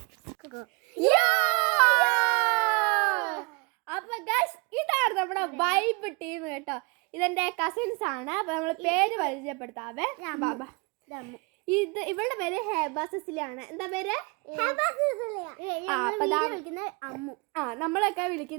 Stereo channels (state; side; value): quieter; left; 30.5 dB